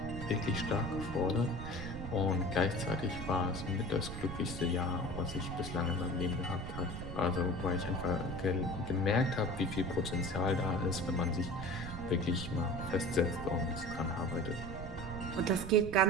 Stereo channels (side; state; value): right; noise; rumble, 8 dB below the sound